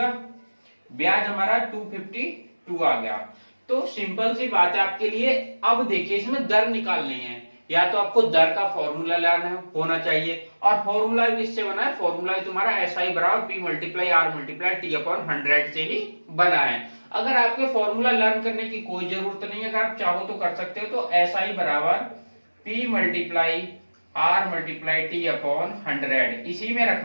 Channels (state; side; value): inverted; both; correlation -1.00